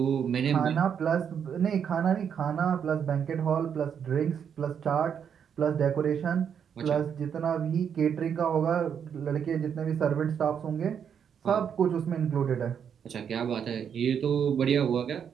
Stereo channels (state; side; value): quieter; left; 7.8 dB